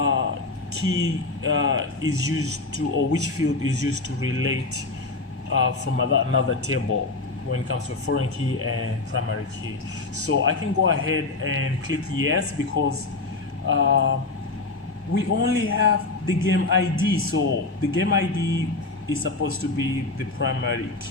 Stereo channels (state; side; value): quieter; right; 3.5 dB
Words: key is used to, or which field is used to relate from another table when it comes to a foreign key and primary key. So I can go ahead and click yes, because we only have the game ID. So the game ID is supposed to be the primary